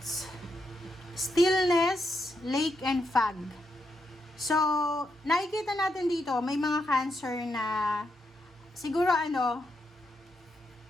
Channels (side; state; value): both; normal; correlation 0.82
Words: Stillness, lake, and fog. So, nakikita natin dito, may mga Cancer na siguro